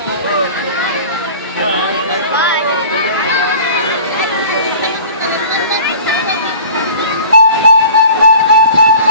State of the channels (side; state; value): both; inverted; correlation -0.43